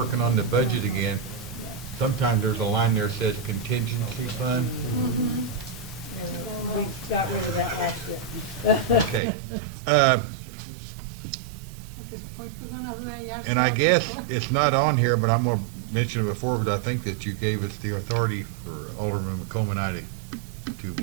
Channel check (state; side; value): drops out; left; at 9.2 s